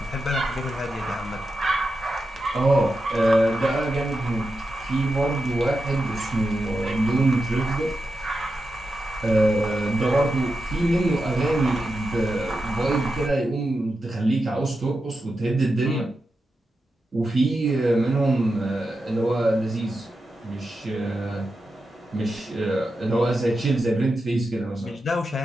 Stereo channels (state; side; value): normal; both; correlation 0.89